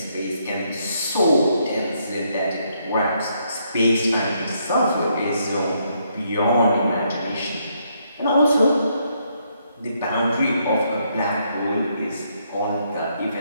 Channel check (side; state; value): both; inverted; correlation -0.74